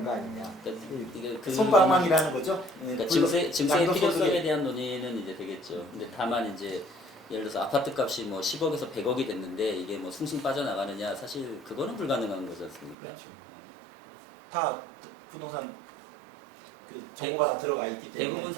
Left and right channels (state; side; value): drops out; left; at 13.0 s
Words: 거 아니냐. 그러니까 이게 그 손방망이라는 거죠. 예, 그러니까 물론 증세의 양도소득에- 필요성에 대한 논의는 이제 되겠죠. 근데 다만 이제 예를 들어서 아파트 값이 뭐 10억에서 100억이 됐는데 이게 뭐 숭숭 빠져나가느냐 사실 그거는 불가능한 거지 않습니까? 그렇죠. 다 부동산 그 정보가 다 들어가 있기 때문에 대부분